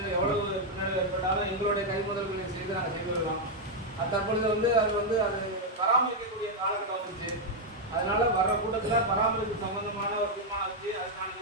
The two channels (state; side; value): normal; both; correlation 0.00